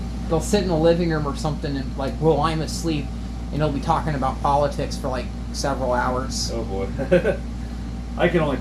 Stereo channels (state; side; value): identical; both; correlation 1.00